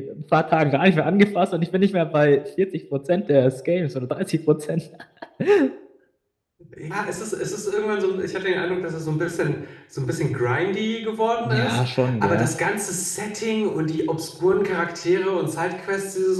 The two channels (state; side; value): identical; both; correlation 1.00